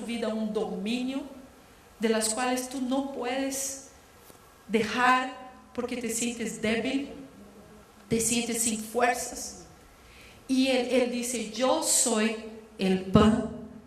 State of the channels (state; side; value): identical; both; correlation 1.00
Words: vida un dominio, de las cuales tú no puedes dejar porque te sientes débil, te sientes sin fuerzas. Y Él dice: yo soy el pan